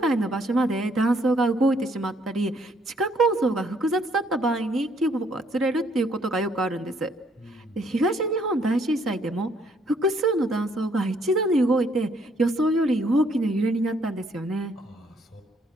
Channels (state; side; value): normal; both; correlation 0.67